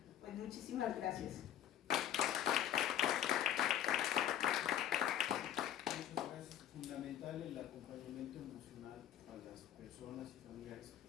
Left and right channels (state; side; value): quieter; right; 11.1 dB